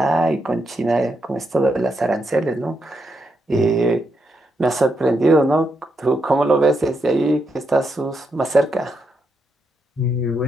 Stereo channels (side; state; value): both; normal; correlation 0.81